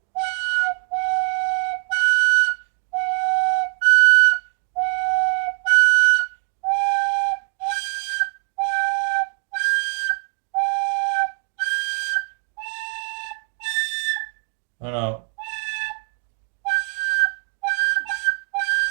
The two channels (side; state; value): left; silent; 64 dB below the other